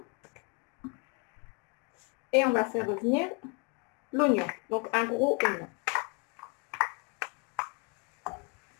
Et on va faire revenir l'oignon, donc un gros oignon.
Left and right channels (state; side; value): quieter; right; 32.7 dB